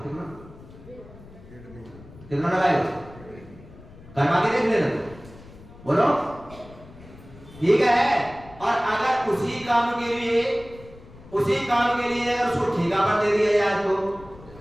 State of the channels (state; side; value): noise; left; rumble, 20 dB below the sound